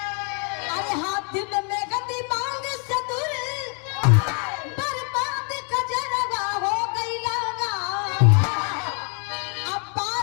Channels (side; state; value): right; quieter; 38.8 dB